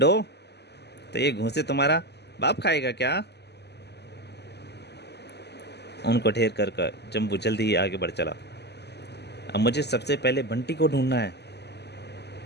तो ये घूंसे तुम्हारा बाप खाएगा क्या। उनको ढेर कर जंबू जल्दी ही आगे बढ़ चला। अब मुझे सबसे पहले बंटी को ढूंढना है।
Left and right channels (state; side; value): late; right; 0.49 ms